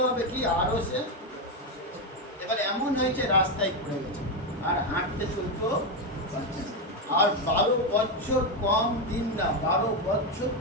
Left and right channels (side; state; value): both; normal; correlation 0.08